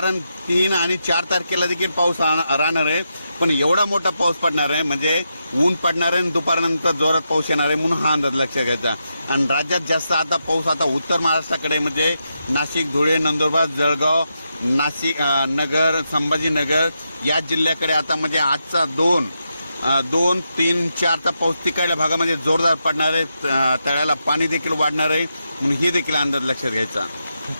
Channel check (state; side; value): inverted; both; correlation -0.85